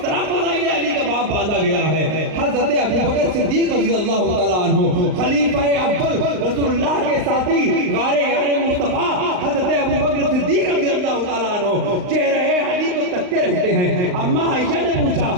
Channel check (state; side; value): late; left; 38 ms